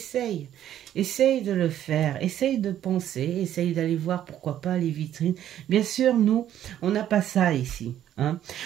de le faire, essaye de penser, essaye d'aller voir pourquoi pas les vitrines. Bien sûr, nous, on n'a pas ça ici, hein.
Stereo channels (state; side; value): quieter; left; 11.2 dB